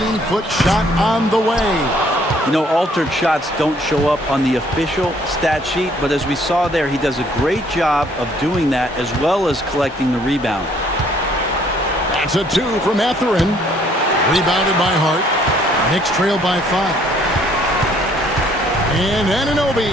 shot on the way. You know, altered shots don't show up on the official stat sheet, but as we saw there, he does a great job of doing that as well as collecting the rebound. That's a 2 for Mathurin. Rebounded by Hart. Knicks trail by 5. And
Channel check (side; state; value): both; normal; correlation 0.62